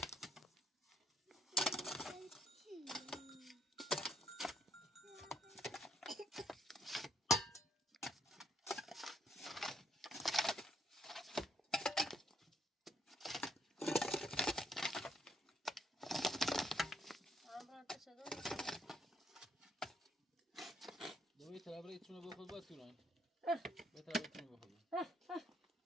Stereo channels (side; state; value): both; normal; correlation 0.70